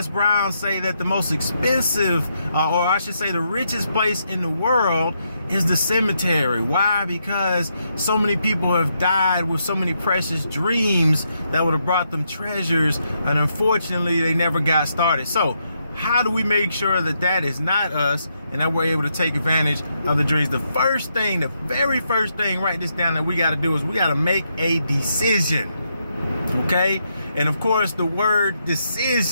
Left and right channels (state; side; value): inverted; both; correlation -0.80